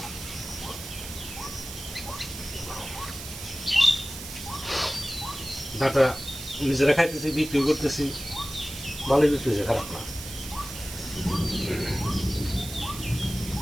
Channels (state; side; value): noise; right; hiss, 10 dB below the sound